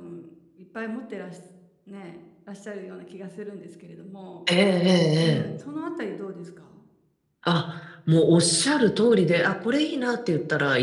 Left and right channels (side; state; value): both; identical; correlation 1.00